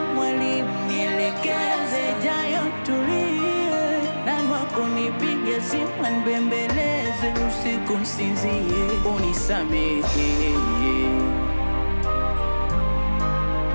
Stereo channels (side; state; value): both; inverted; correlation -1.00